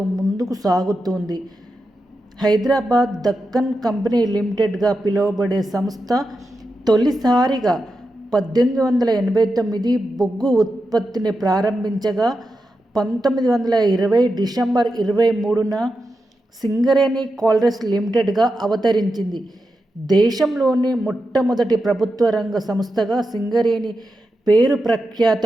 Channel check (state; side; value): normal; both; correlation 0.89